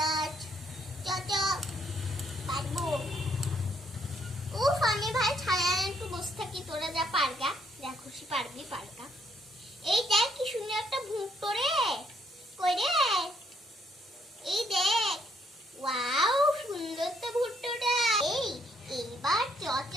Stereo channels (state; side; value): normal; both; correlation 0.70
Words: পারবো। উফ, আমি ভাই ছায়া একটু বসে থাকি, তোরা যা পারগা, যা খুশি পারবি পারগা। এই দেখ কি সুন্দর একটা ভুট্টো রে। কই রে? এই দেখ, ওয়াও সুন্দর তো ভুট্টোটা। এইবার